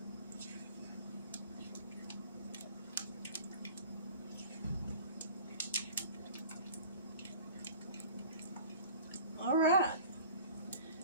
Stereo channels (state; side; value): inverted; both; correlation -0.43